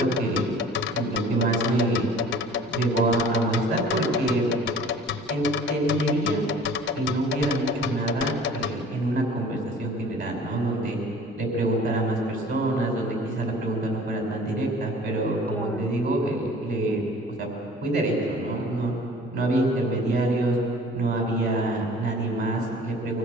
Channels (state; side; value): normal; both; correlation 0.48